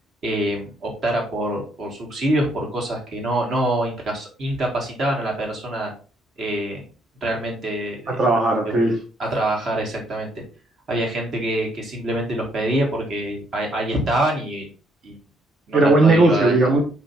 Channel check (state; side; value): normal; both; correlation 0.70